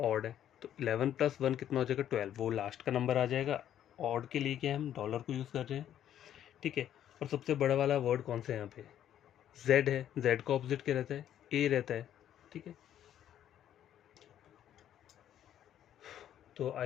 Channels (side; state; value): right; quieter; 10.7 dB